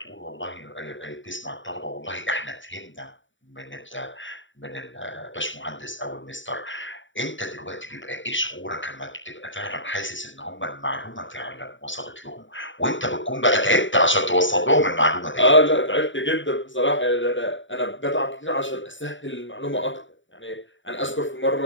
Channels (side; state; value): right; late; 0.55 ms